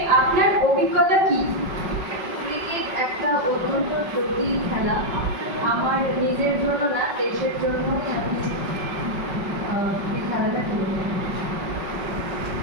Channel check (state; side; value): late; left; 5.4 ms